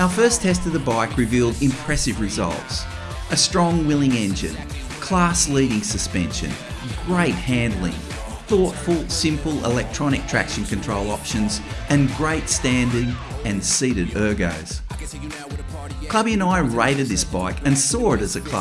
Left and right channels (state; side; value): identical; both; correlation 1.00